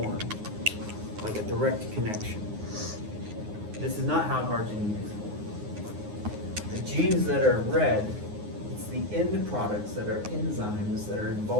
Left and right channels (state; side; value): late; left; 9.6 ms